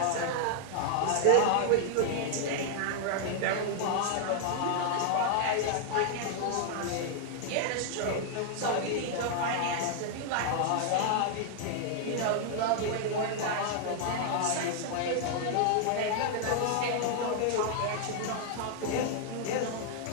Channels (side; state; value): both; different; correlation 0.00